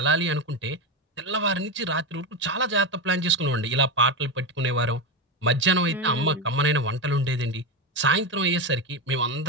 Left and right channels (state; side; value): normal; both; correlation 0.14